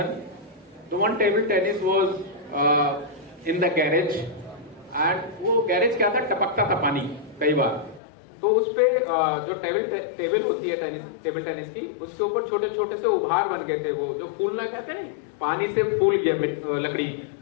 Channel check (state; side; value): drops out; right; at 8.0 s